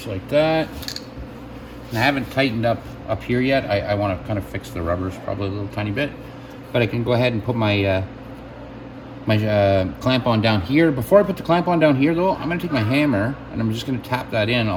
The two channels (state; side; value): identical; both; correlation 1.00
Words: like that. And I haven't tightened up here yet. I want to kind of fix the rubbers probably a little tiny bit, but I can go ahead and put my clamp on down here. Before I put the clamp on down here though, I'm going to take my hammer and I'm just going to tap that in